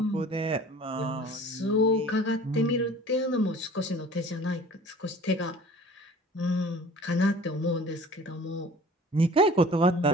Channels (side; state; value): both; normal; correlation 0.46